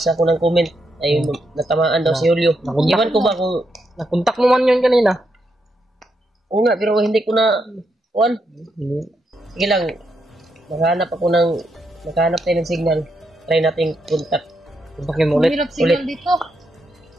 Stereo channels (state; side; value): normal; both; correlation 0.81